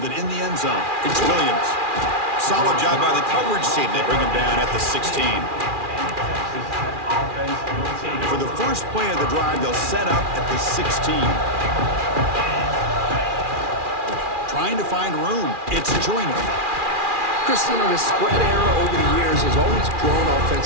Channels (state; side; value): late; left; 2.4 ms